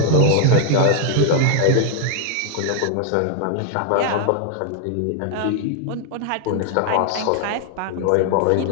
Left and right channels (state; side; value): different; both; correlation 0.00